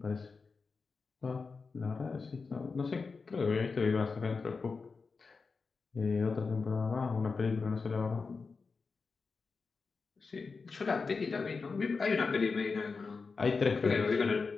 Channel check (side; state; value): right; quieter; 4.6 dB